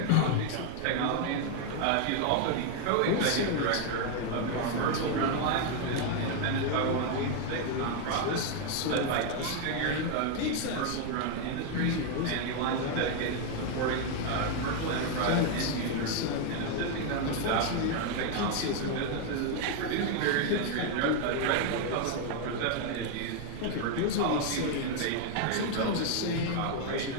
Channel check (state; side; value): different; both; correlation 0.01